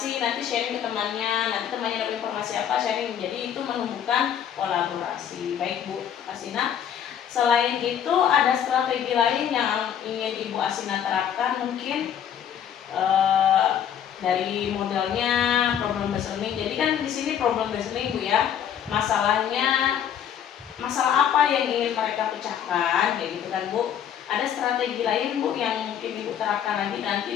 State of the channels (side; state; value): right; quieter; 9.2 dB